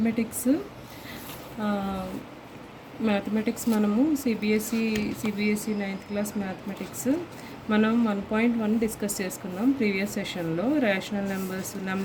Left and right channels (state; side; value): identical; both; correlation 1.00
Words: మనము CBSE 9th class mathematics మనం 1.1 డిస్కస్ చేసుకున్నాం ప్రీవియస్ సెషన్లో. రేషనల్